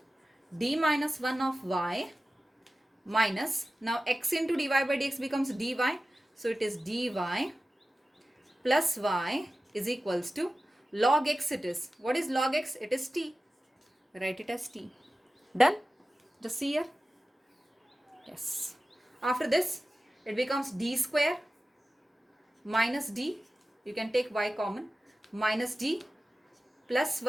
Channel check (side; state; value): both; normal; correlation 0.95